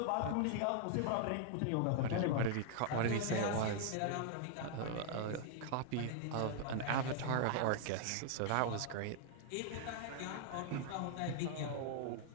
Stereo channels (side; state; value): both; different; correlation 0.00